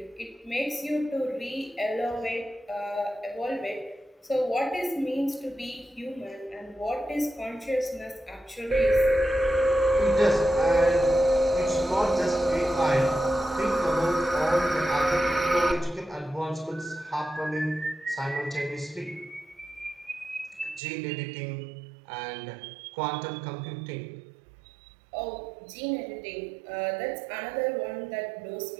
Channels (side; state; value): left; drops out; at 20.8 s